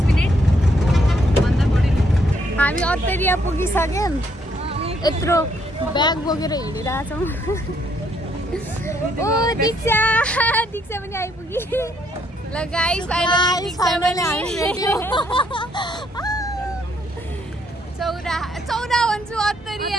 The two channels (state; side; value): normal; both; correlation 0.71